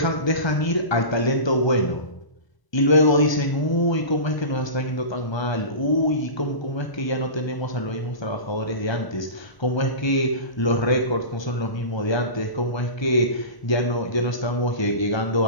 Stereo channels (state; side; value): late; right; 1.2 ms